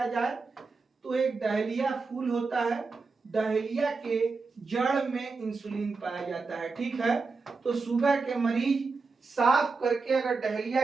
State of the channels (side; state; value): left; quieter; 4.3 dB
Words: जाए, तो एक डहेलिया फूल होता है, डहेलिया के जड़ में इंसुलिन पाया जाता है। ठीक है, तो शुगर के मरीज साफ करके अगर डहेलिया